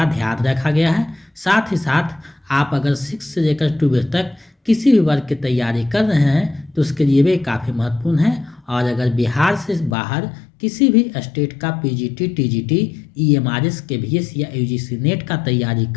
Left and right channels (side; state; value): right; drops out; at 10.0 s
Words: ध्यान रखा गया है। साथ ही साथ आप अगर 6 से लेकर 12 तक किसी भी वर्ग की तैयारी कर रहे हैं तो उसके लिए भी काफ़ी महत्वपूर्ण है। और अगर बिहार से बाहर किसी भी स्टेट का पीजीटी, टीजीटी, ईएमआरएस, केवीएस या यूजीसी नेट का तैयारी